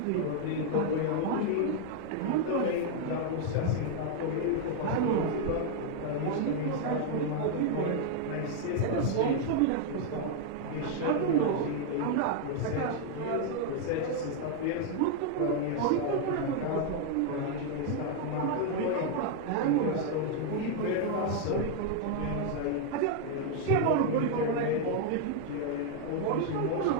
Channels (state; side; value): different; both; correlation 0.00